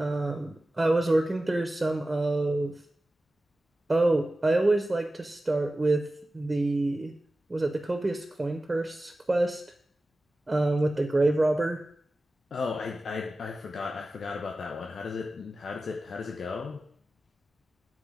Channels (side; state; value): both; normal; correlation 0.95